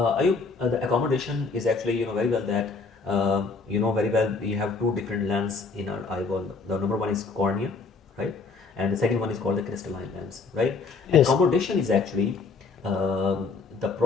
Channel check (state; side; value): quieter; right; 4.4 dB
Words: accommodation is actually, very well that, very well we have two different lenses in our eyeball. The number one is cornea, right? And the second one is called the crystalline lens, right? Yes. Accommodation is actually the